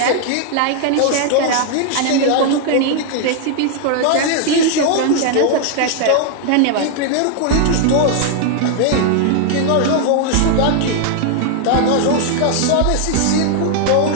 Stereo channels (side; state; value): both; different; correlation 0.00